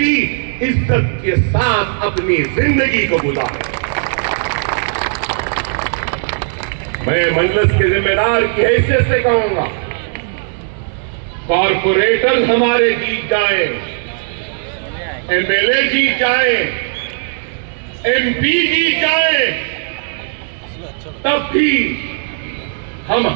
عزت کے ساتھ اپنی زندگی کو گزارے۔ میں مجلس کے ذمہ دار کی حیثیت سے کہوں گا، کارپوریٹر ہمارے جیت جائیں، ایم ایل اے جیت جائیں، ایم پی جیت جائیں، تب بھی ہم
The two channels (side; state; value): left; silent; digital silence